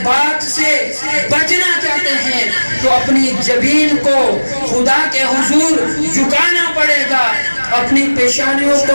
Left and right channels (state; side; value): inverted; both; correlation -1.00